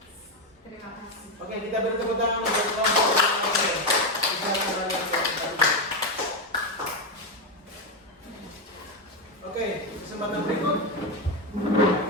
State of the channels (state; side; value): normal; both; correlation 0.09